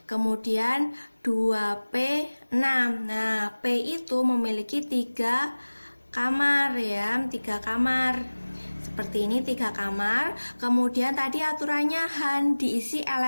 Kemudian 2P6. Nah, P itu memiliki 3 kamar ya, 3 kamar. Seperti ini 3 kamar. Kemudian tadi aturannya Han diisi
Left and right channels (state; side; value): inverted; both; correlation -1.00